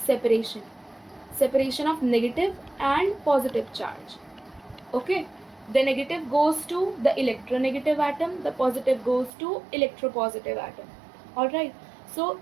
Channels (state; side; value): drops out; left; at 9.3 s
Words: Separation of negative and positive charge. Okay, the negative goes to the electronegative atom, the positive goes to electropositive atom. Alright, so